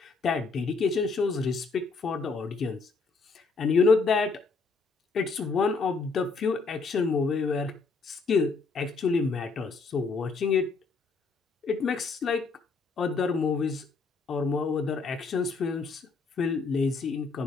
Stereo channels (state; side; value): quieter; right; 4.3 dB